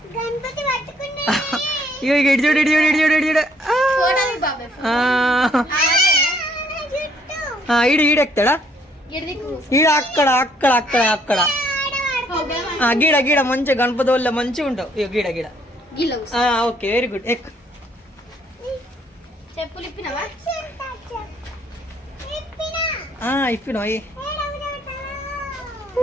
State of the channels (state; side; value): normal; both; correlation 0.66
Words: ఇడిచూడు ఇడిచూడు ఇడిచూడు ఇడిచూడు. ఈడెక్తాడా? ఈడ అక్కడ అక్కడ అక్కడ అక్కడ గీడ గీడ మంచిగా గణపతి వల్ల మంచిగా ఉంటావు. గీడ గీడ. Okay very good. ఎక్ ఇప్పినా